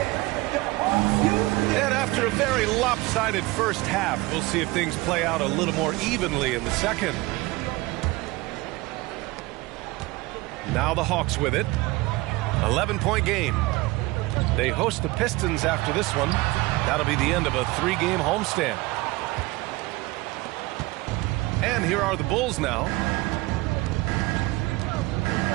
And after a very lopsided first half, we'll see if things play out a little more evenly in the second. Now the Hawks with it. 11-point game. They host the Pistons after this one. That'll be the end of a 3-game homestand. And here are the Bulls now.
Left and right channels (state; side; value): quieter; left; 21.3 dB